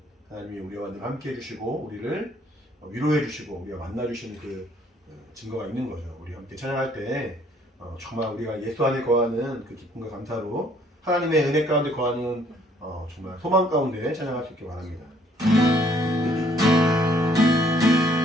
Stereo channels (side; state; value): both; normal; correlation 0.63